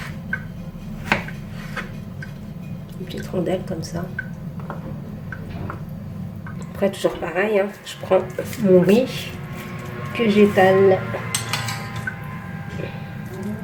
Des petites rondelles comme ça. Après, toujours pareil, hein. Je prends mon riz que j'étale.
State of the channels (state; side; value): identical; both; correlation 1.00